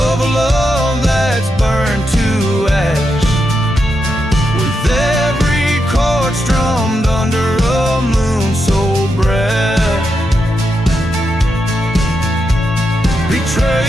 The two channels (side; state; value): both; normal; correlation 0.84